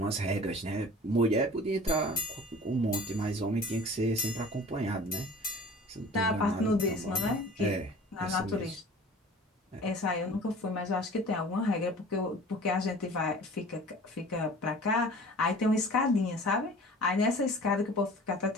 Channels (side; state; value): both; normal; correlation 0.44